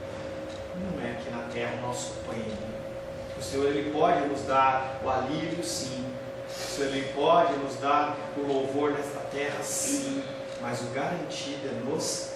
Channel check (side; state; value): both; identical; correlation 1.00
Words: Não é aqui na terra o nosso prêmio. O Senhor, ele pode nos dar o alívio, sim. O Senhor, ele pode nos dar o louvor nesta terra, sim. Mas o garantido é nos